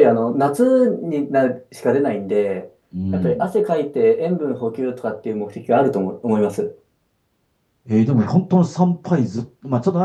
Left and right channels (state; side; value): identical; both; correlation 1.00